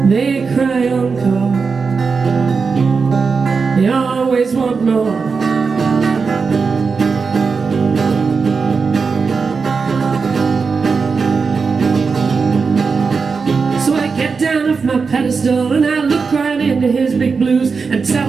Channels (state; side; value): quieter; left; 5.0 dB